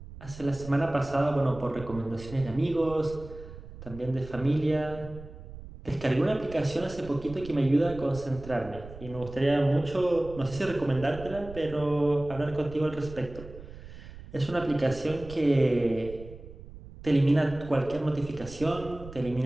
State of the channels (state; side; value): noise; right; rumble, 15 dB below the sound